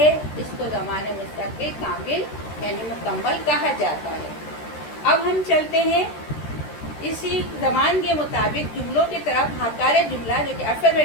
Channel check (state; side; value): late; right; 13 ms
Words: इसको ज़माने मुस्तक़बिल कामिल यानी मुकम्मल कहा जाता है। अब हम चलते हैं इसी ज़मान के मुताबिक जुमलों की तरफ। हकारे जुमला जो कि